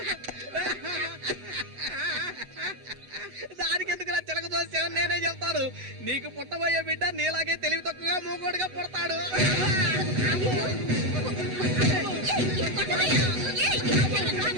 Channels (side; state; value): left; late; 8.1 ms